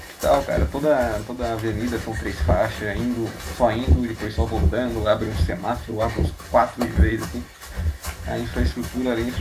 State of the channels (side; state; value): both; identical; correlation 1.00